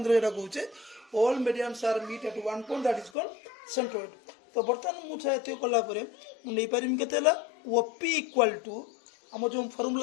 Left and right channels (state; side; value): drops out; right; at 3.1 s